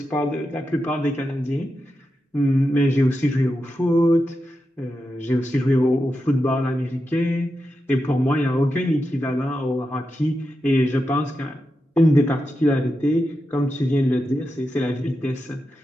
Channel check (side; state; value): both; normal; correlation 0.89